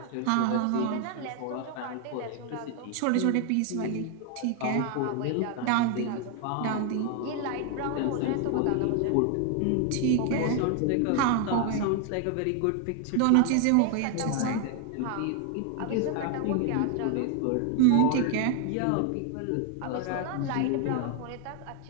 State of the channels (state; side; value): different; both; correlation 0.00